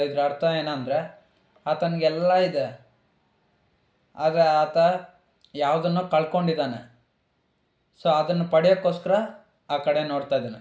ಇದ್ರ ಅರ್ಥ ಏನಂದರೆ ಆತನಿಗೆಲ್ಲ ಇದೆ, ಆದರೆ ಆತ ಯಾವುದನ್ನೋ ಕಳ್ಕೊಂಡಿದ್ದಾನೆ. ಸೊ ಅದನ್ನು ಪಡೆಯೋಕ್ಕೋಸ್ಕರ ಆ ಕಡೆ ನೋಡ್ತಾ ಇದ್ದಾನೆ.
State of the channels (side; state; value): both; identical; correlation 1.00